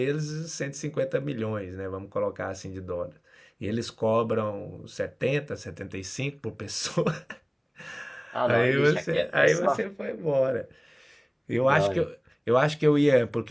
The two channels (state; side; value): identical; both; correlation 1.00